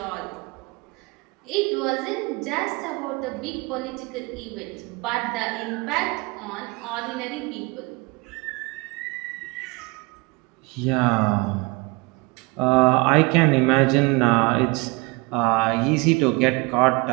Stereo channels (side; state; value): left; quieter; 26.8 dB